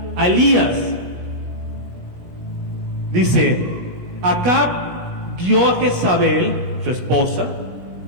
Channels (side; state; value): left; late; 17 ms